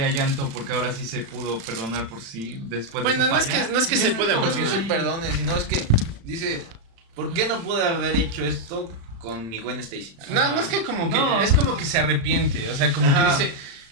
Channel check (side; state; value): left; late; 35 ms